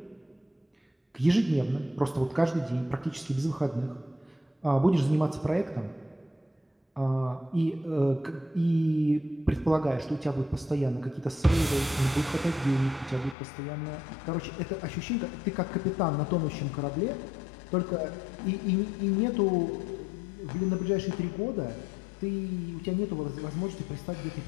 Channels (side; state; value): right; drops out; at 13.4 s